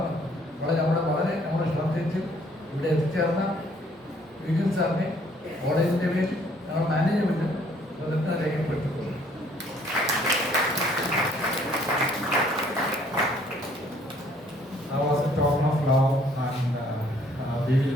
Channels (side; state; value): both; normal; correlation 0.62